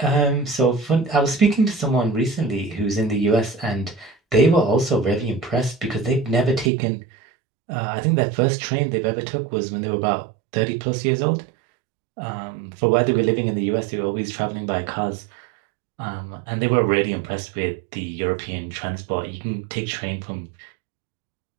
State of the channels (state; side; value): drops out; left; at 6.7 s